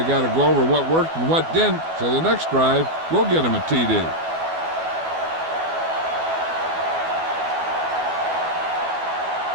got to go over what worked and what didn't, so the next drive will get them a TD.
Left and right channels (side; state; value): left; late; 12 ms